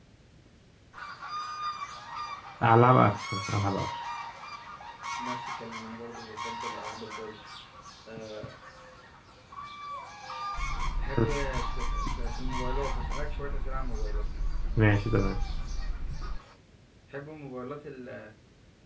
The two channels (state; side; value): identical; both; correlation 1.00